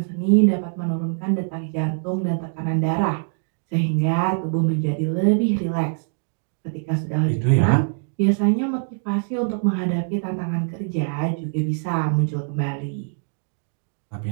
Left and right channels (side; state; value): left; silent; 63 dB below the other